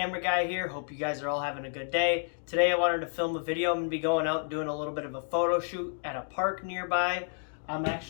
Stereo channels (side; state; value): right; silent; digital silence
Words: guy here. Hope you guys are all having a good day. Today I wanted to film a video. I'm going to be going out and doing a little bit of a photo shoot at a park nearby. I'm